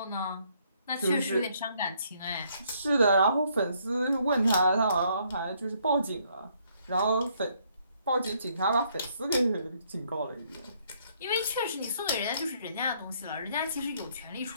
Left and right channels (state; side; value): inverted; both; correlation -0.69